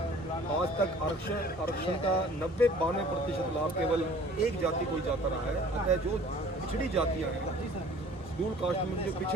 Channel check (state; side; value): normal; both; correlation 0.50